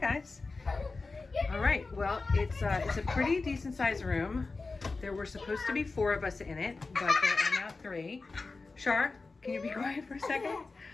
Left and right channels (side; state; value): right; quieter; 3.8 dB